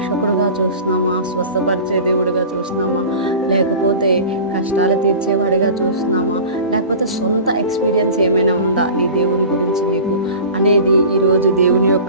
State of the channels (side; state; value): both; inverted; correlation -0.37